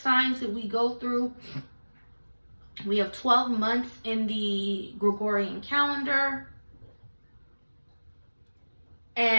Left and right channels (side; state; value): both; inverted; correlation -1.00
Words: that we go through. We have 12 months in the Gregorian calendar.